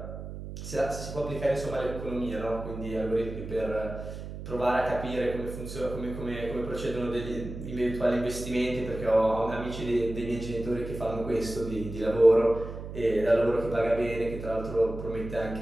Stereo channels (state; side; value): noise; right; hum, 9 dB below the sound